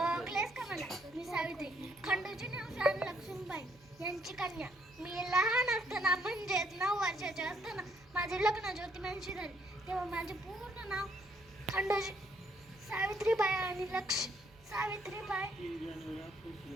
ओळखलेस का मला? मी सावित्री, खंडोजी राणी लक्ष्मीबाई यांची कन्या. मी लहान असताना म्हणजेच 9 वर्षाचे असताना माझे लग्न ज्योतिबांशी झाले. तेव्हा माझे पूर्ण नाव खंडोजी सावित्रीबाई आणि सावित्रीबाई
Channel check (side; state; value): right; noise; hum, 27 dB below the sound